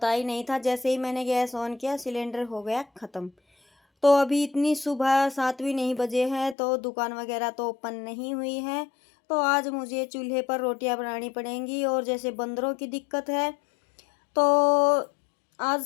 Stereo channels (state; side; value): drops out; right; at 6.6 s